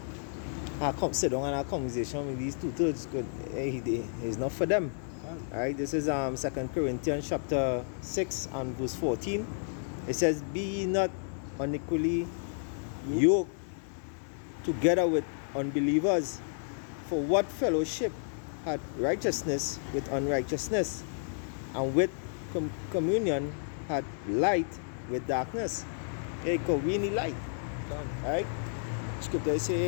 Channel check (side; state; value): right; silent; 57 dB below the other